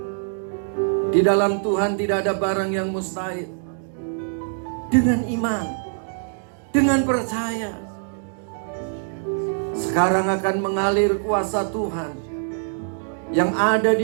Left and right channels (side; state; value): left; silent; digital silence